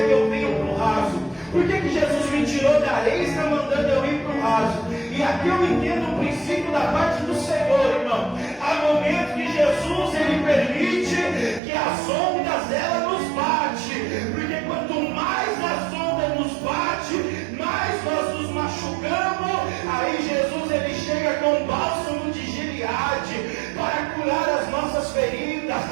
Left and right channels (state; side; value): drops out; left; at 11.6 s